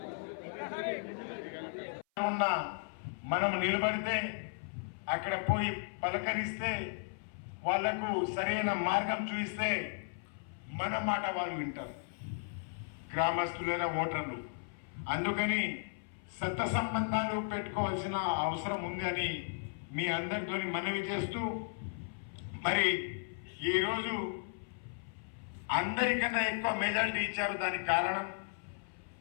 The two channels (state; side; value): silent; right; 54 dB below the other